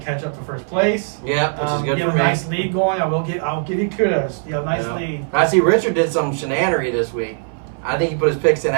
catch up to first place. Yeah, which is good you for have a me. nice lead going. I'll give you kudos. You have a nice lead. I see Richard did some shenanery this week. I think he put his picks in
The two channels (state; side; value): silent; left; 61 dB below the other